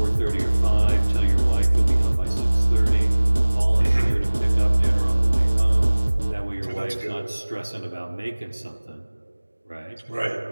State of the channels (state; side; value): inverted; both; correlation -1.00